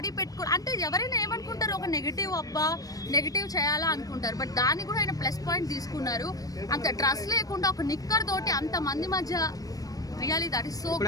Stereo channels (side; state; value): right; late; 0.18 ms